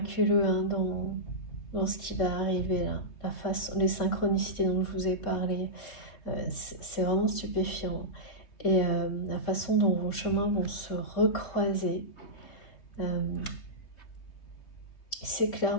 hein, dans ce qui va arriver là. La façon, les synchronicités dont je vous ai parlé, c'est vraiment stupéfiant. Et la façon dont vos chemins vont se recroiser, c'est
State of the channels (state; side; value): late; right; 3.6 ms